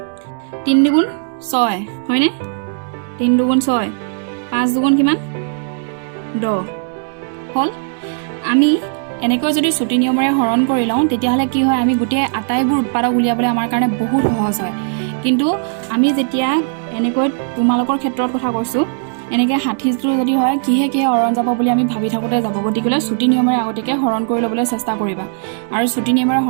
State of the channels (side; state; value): left; silent; 68 dB below the other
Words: 3 দুগুণ 6 হয়নে 3 দুগুণ 6 5 দুগুণ কিমান 10 হল আমি এনেকৈ যদি ছুটি নিয়মেৰে হৰণ কৰি লওঁ তেতিয়াহলে কি হয় আমি গোটেই আটাইবোৰ উৎপাদক উলিয়াবলৈ আমাৰ কাৰণে বহুত সহজ হয় কিন্তু আমি যেতিয়া এনেকৈ তোমালোকৰ ক্ষেত্ৰত কথা কৈছো এনেকৈ 60 টো যদি হয় কিহে হৰণ যাব বুলি আমি ভাবি থাকোতে যাব গতিকে ছুটি নিয়মেৰে আগতেকে হৰণ কৰি ল'বলৈ চেষ্টা কৰিবা আৰু ছুটি নিয়মেৰে